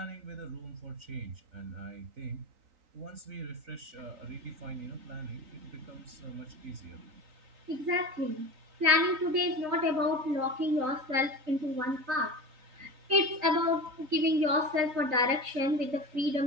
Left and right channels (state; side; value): late; left; 3.9 ms